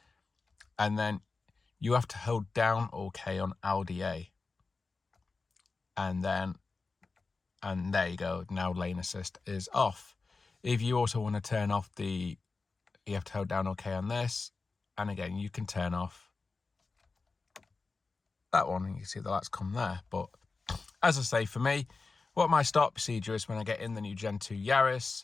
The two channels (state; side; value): quieter; right; 4.1 dB